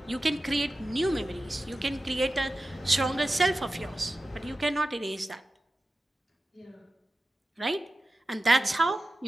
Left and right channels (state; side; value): normal; both; correlation 0.94